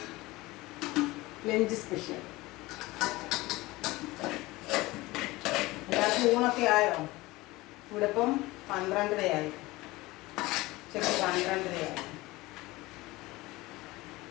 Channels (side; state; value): right; quieter; 20.3 dB